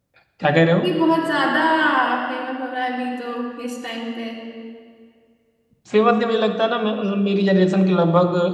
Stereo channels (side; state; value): both; identical; correlation 1.00